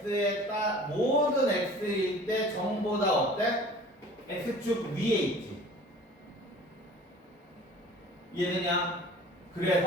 x일 때 전보다 어때? x축 위에 있지. 이해되냐?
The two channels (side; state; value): both; normal; correlation 0.45